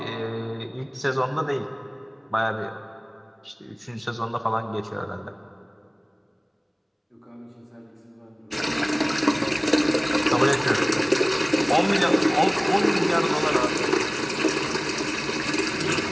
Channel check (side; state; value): both; identical; correlation 1.00